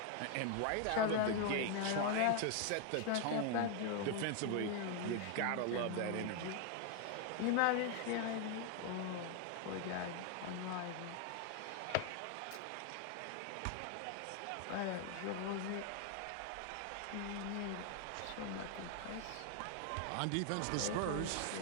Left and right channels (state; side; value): different; both; correlation 0.01